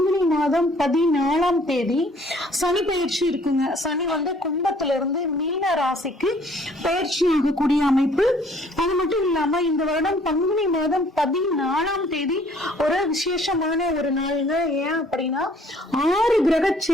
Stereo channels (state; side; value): normal; both; correlation 0.59